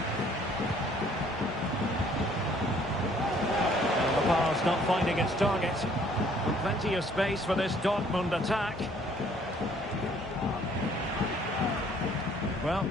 Not finding its target. And plenty of space for this Dortmund attack. Well,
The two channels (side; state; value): both; normal; correlation 0.60